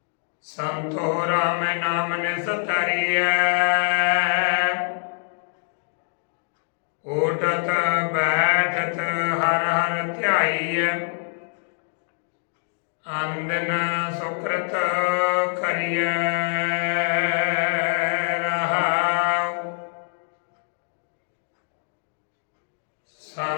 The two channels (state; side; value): silent; right; 62 dB below the other